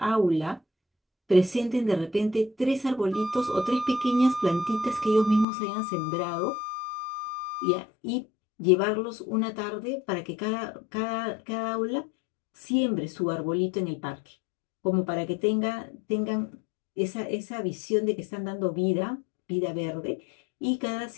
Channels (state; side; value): drops out; right; at 5.5 s